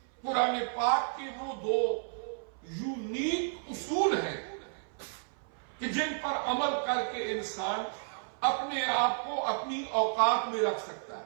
قرآن پاک کے وہ دو یونیک اصول ہیں کہ جن پر عمل کر کے انسان اپنے آپ کو اپنی اوقات میں رکھ سکتا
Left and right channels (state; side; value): silent; left; 56 dB below the other